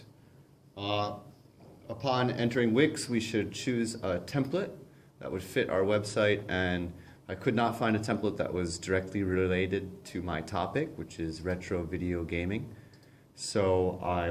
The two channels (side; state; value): both; identical; correlation 1.00